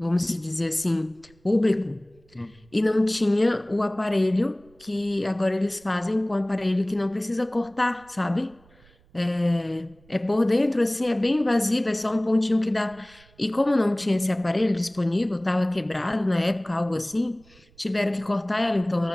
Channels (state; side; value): noise; right; rumble, 29 dB below the sound